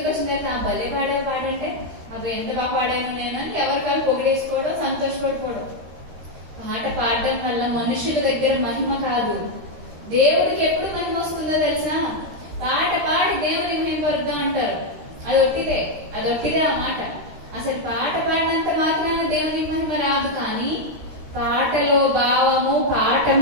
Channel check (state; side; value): late; left; 13 ms